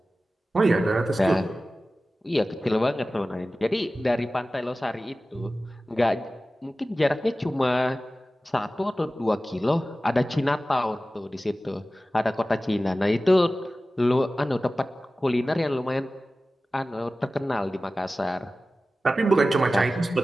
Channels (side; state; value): both; normal; correlation 0.96